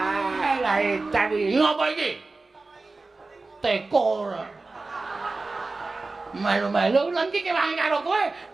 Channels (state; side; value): quieter; left; 3.5 dB